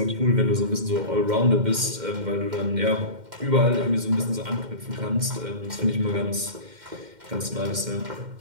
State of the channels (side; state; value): left; late; 2.1 ms